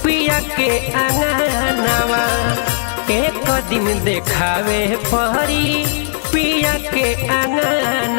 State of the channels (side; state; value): right; silent; 56 dB below the other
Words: पिया के अंगनवा, एक दिन देखावे पड़ी पिया के